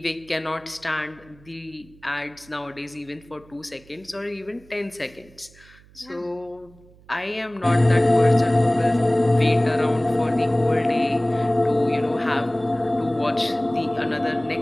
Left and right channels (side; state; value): right; noise; hum, 26 dB below the sound